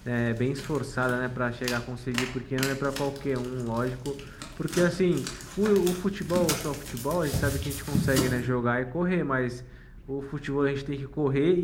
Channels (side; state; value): both; identical; correlation 1.00